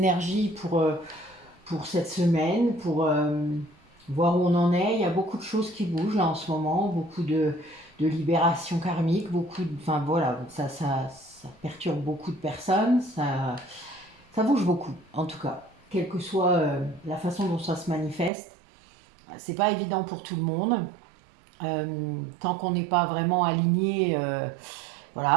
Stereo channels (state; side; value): drops out; left; at 18.3 s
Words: pour cette semaine, pour voir où on en est. Il y a beaucoup de choses qui bougent là en ce moment, beaucoup de libération karmique, enfin voilà, ça perturbe beaucoup de personnes, ça bouge beaucoup en tout cas, quelle que soit la façon dont ça se manifeste. C'est pas évident pour tout le monde. Tant qu'on n'est pas vraiment aligné,